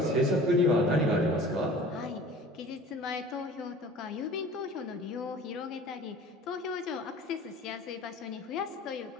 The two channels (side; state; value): both; normal; correlation 0.44